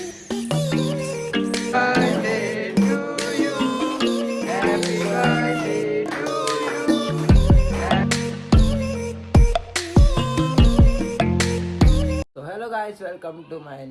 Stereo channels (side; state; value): both; identical; correlation 1.00